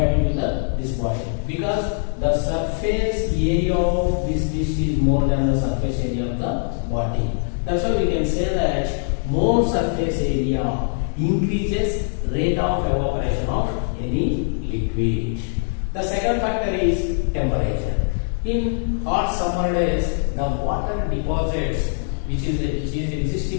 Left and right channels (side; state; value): right; silent; 64 dB below the other